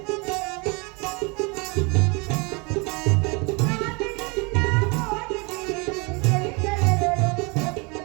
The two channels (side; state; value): left; quieter; 30.2 dB